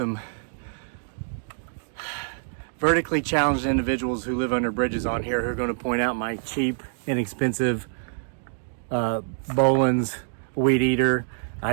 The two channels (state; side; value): silent; left; digital silence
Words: vertically challenged individuals who live under bridges on here who are going to point out my cheap, inexpensive Boland's weed eater.